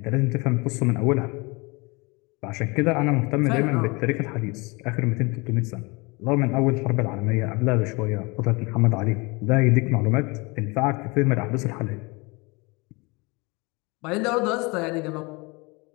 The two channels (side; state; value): right; quieter; 26.8 dB